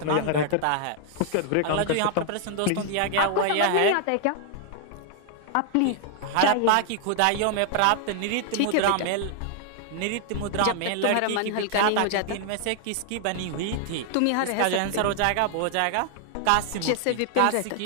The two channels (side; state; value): both; different; correlation 0.00